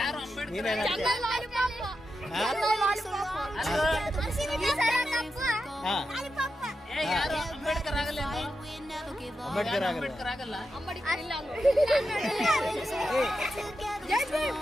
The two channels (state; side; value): normal; both; correlation 0.88